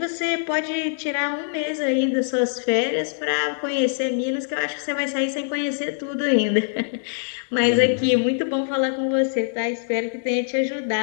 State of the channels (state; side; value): silent; right; digital silence